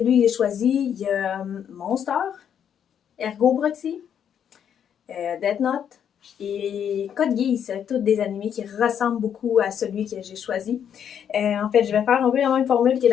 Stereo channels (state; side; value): quieter; right; 8.6 dB